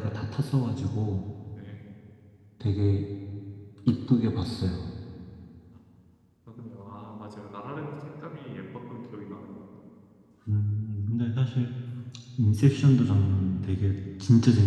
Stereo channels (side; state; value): both; identical; correlation 1.00